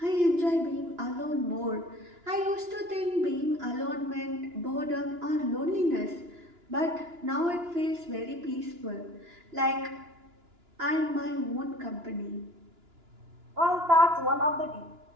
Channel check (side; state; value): left; late; 2.9 ms